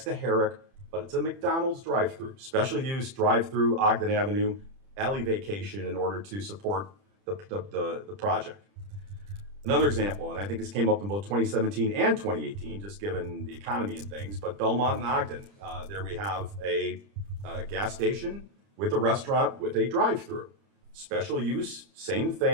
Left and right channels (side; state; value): left; late; 30 ms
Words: to Herrick, but it's a McDonald's drive-through, special use drive-through Ogden Avenue, alley vacation in order to support the project. Another example, and I think this came up in both 2017 and 2018, just given the economy and things, but Belmont and Ogden, there we have a gas station with a restaurant with a drive-through. Special use, same